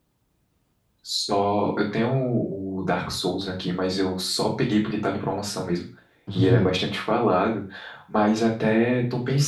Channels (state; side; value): identical; both; correlation 1.00